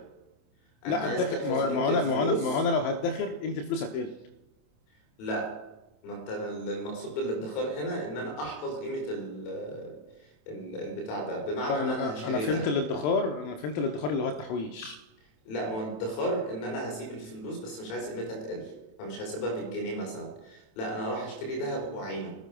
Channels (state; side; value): late; right; 27 ms